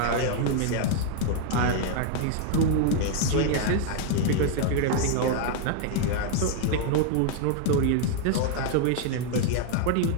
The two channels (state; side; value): different; both; correlation 0.00